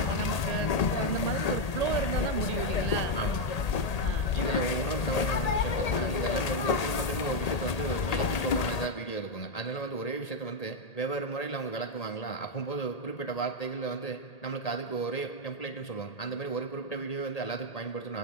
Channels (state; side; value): late; right; 1.8 ms